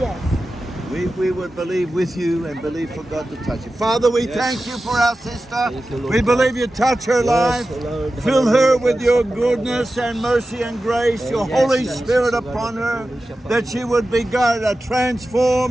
We would believe with you and believe for God to touch you. Father, we thank you for our sister. Thank you, Lord We God. believe you touch her life. Lord. Fill her with your goodness and mercy and grace, your Yes, Holy yes. Spirit upon her, that she would be, God, a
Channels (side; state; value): both; normal; correlation 0.94